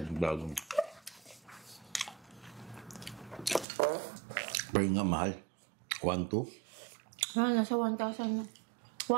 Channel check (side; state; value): left; drops out; at 3.7 s